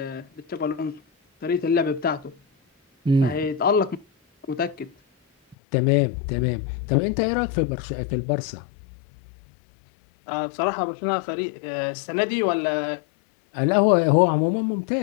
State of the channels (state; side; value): drops out; right; at 5.6 s